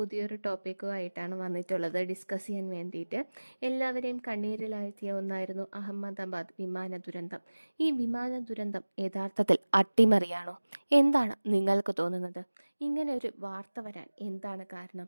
ടോപ്പിക്കുമായിട്ടാണ് വന്നിട്ടുള്ളത് ഡിസ്കസ് ചെയ്യാൻ വേണ്ടിയിട്ട്. എല്ലാവരെയും കണ്ണീരിലാഴ്ത്തിയ ഒന്നായിരുന്നു അഹമ്മദാബാദ് വിമാന ദുരന്തം. ഈ വിമാന ദുരന്തം യഥാർത്ഥത്തിൽ അട്ടിമറിയാണോ? എന്താണ് നിങ്ങൾക്ക് തോന്നുന്നത്? ഇങ്ങനെ ഒരു വാർത്ത വരാൻ എന്താണ്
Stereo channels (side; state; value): both; inverted; correlation -1.00